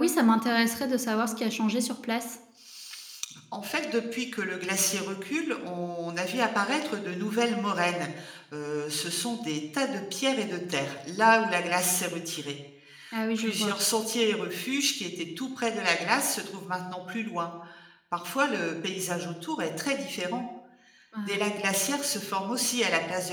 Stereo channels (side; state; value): both; identical; correlation 1.00